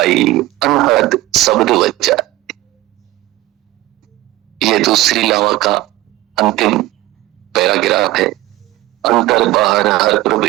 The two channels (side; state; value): left; quieter; 16.7 dB